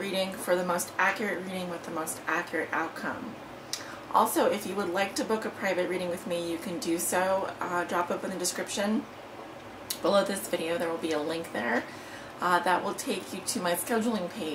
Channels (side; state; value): both; identical; correlation 1.00